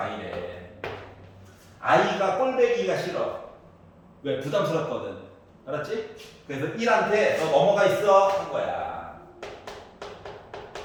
i가 꼴배기가 싫어. 왜? 부담스럽거든. 알았지? 그래서 1한테 너 넘어가 있어 한 거야.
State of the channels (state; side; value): identical; both; correlation 1.00